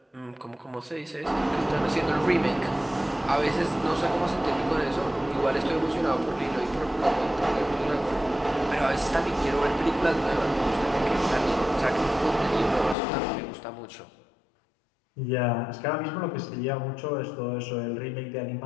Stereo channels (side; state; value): right; drops out; at 13.0 s